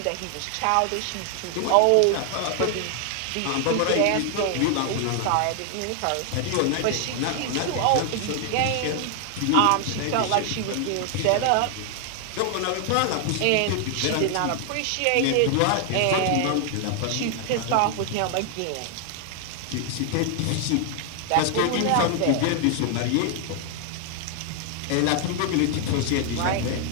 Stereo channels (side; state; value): both; different; correlation 0.00